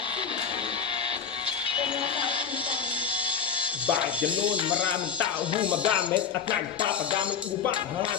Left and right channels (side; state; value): right; quieter; 6.9 dB